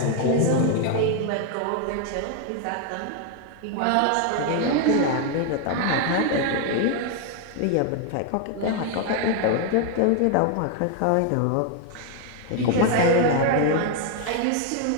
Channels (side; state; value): both; different; correlation 0.00